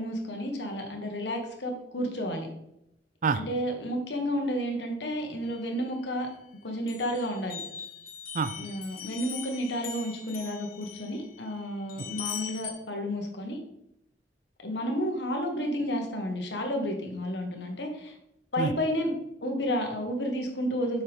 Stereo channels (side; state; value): both; normal; correlation 0.39